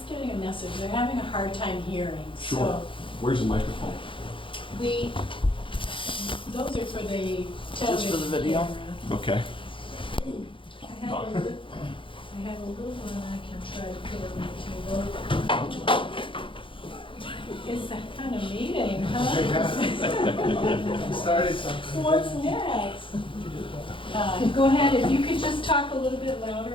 getting a message. They're having a hard time hearing. Sure. So Where's the microphone? those are for the television. Just for the video? camera. Okay. I have a little one I can try to put over to. It's that kind of meeting, huh? Started something. What's next? Go ahead, if you could just talk a little bit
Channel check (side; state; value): right; late; 0.25 ms